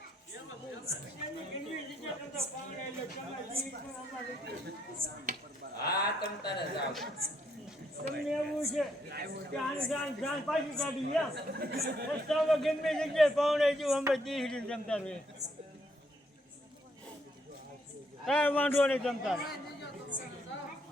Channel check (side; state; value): both; normal; correlation 0.73